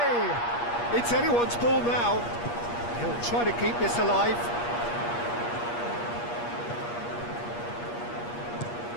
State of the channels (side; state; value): right; late; 8.4 ms